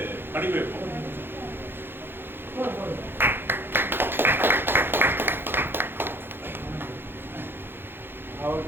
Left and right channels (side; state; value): left; late; 0.10 ms